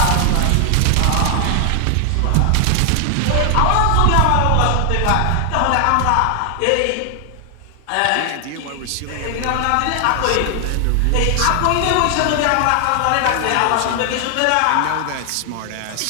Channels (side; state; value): both; different; correlation 0.00